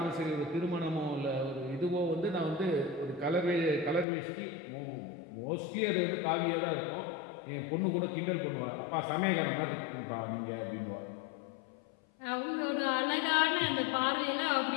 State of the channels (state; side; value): drops out; right; at 4.0 s